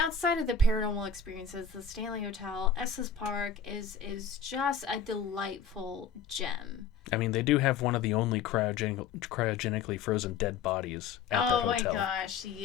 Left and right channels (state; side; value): quieter; right; 6.1 dB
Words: of the paranormal experiences, the Stanley Hotel, Estes Park is just a delightful gem. I mean, they do have one of the only cryogenically frozen dead bodies at that hotel. Oh my gosh,